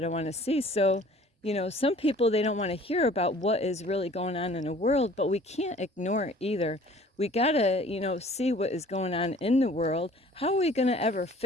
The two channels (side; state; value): both; normal; correlation 0.51